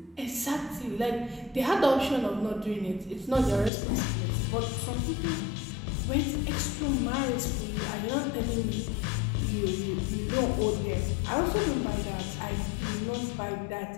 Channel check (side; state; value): right; drops out; at 3.7 s